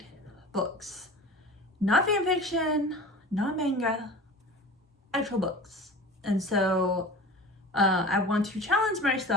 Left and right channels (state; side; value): normal; both; correlation 0.36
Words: books. Not fan fiction, not manga, actual books. And so I want to challenge